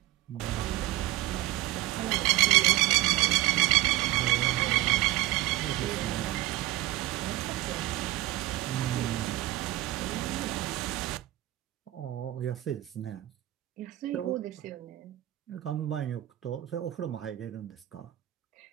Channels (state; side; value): quieter; left; 16.4 dB